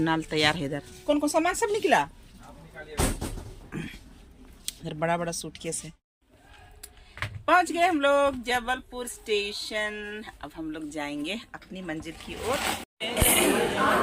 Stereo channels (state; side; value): identical; both; correlation 1.00